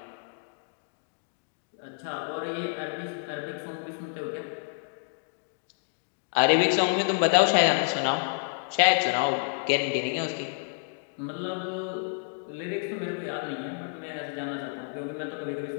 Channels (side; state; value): right; silent; digital silence